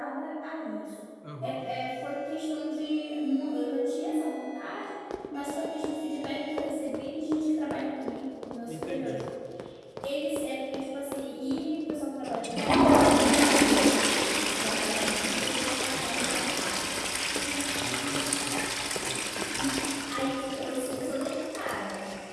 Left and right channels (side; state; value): both; identical; correlation 1.00